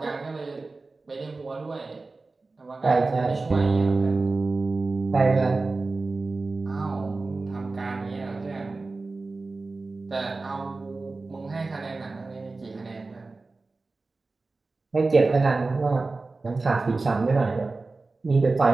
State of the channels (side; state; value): left; quieter; 3.6 dB